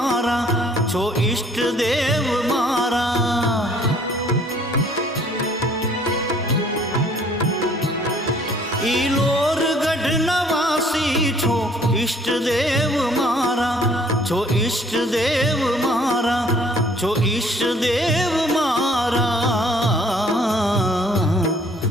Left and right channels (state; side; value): normal; both; correlation 0.58